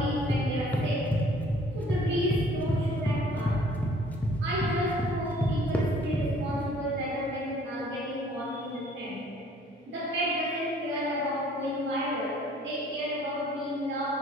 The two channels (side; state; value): both; normal; correlation 0.56